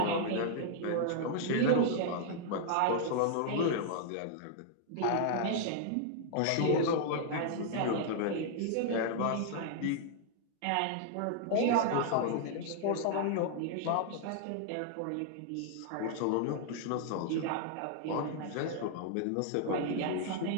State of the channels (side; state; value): both; different; correlation -0.01